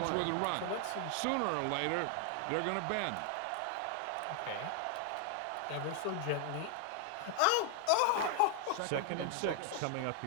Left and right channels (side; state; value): both; different; correlation 0.00